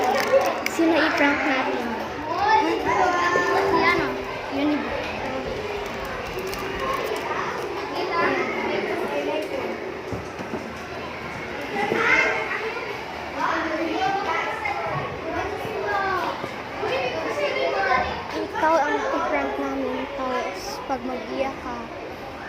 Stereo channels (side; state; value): both; identical; correlation 1.00